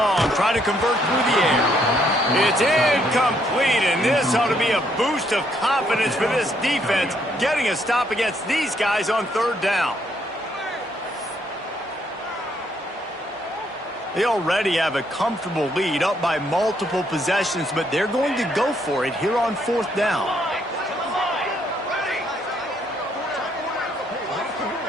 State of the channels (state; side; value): normal; both; correlation 0.71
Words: try to convert through the air. It's incomplete, and this ought to be a boost of confidence for this defense, getting a stop against these guys on 3rd down. They already have a comfortable lead, up by multiple possessions, but they're going to go for it here on 4th down.